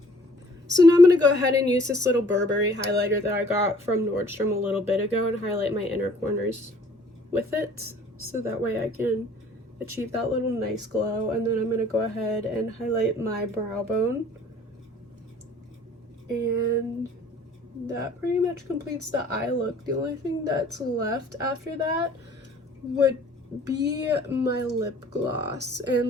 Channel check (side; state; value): both; normal; correlation 0.55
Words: So now I'm going to go ahead and use this little Burberry highlighter that I got from Nordstrom a little bit ago and highlight my inner corners with it, so that way I can achieve that little nice glow. And then I'm going to go ahead and highlight my brow bone, and that pretty much completes the eye look. The only thing that's left after that would be my lip gloss, and